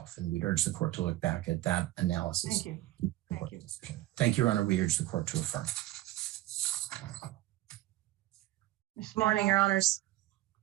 And we'd urge the court to look back at that analysis. Thank you. Thank you. Thank you, Your Honor. We urge the court to affirm. Good morning, Your Honors.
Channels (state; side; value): quieter; left; 16.0 dB